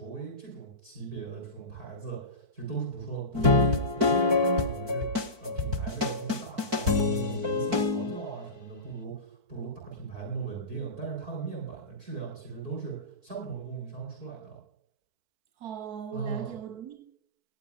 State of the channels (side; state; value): left; late; 4.5 ms